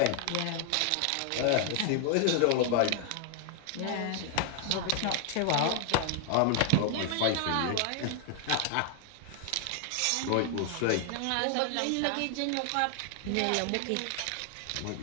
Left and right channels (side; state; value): both; different; correlation 0.00